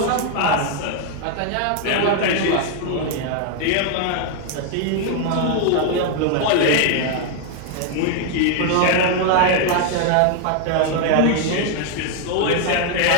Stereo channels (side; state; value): both; different; correlation 0.00